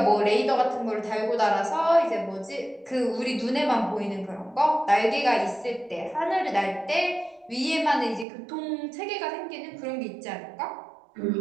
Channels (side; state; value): left; drops out; at 8.2 s